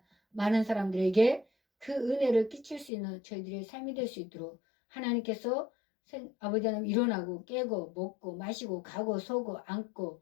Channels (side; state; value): right; drops out; at 2.9 s